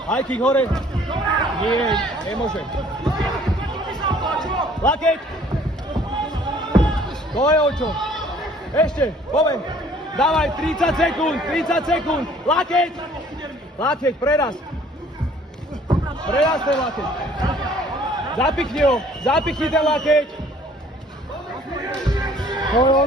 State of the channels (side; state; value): both; normal; correlation 0.56